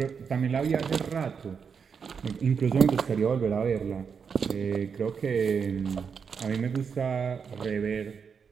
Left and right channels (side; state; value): left; quieter; 6.3 dB